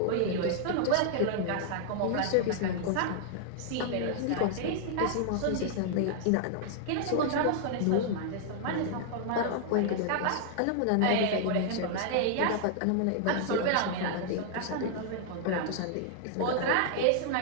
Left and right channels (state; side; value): different; both; correlation -0.01